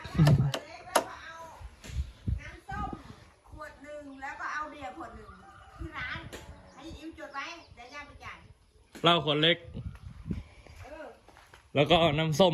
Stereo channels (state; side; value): identical; both; correlation 1.00